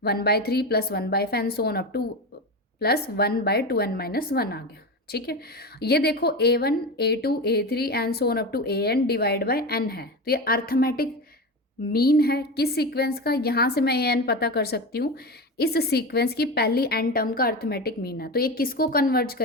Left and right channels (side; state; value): both; normal; correlation 0.22